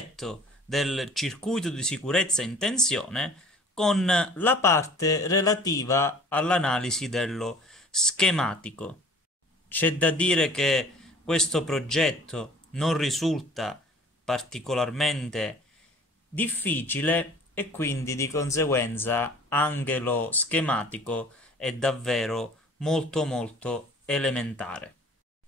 del circuito di sicurezza in tensione con la parte relativa all'analisi dello schematico. C'è da dire che questo progetto non risulta particolarmente difficile e quindi di conseguenza anche lo schematico è davvero molto elementare.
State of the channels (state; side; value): normal; both; correlation 0.49